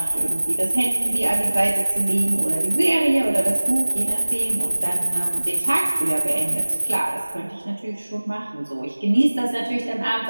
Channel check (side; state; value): both; inverted; correlation -1.00